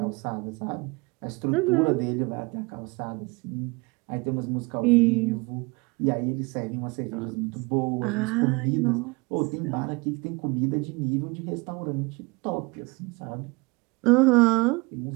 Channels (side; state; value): left; quieter; 26.9 dB